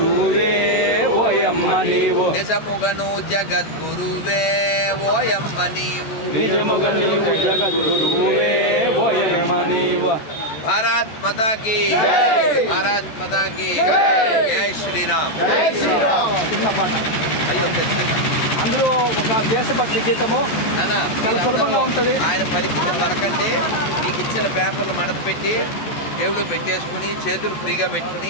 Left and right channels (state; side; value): late; right; 14 ms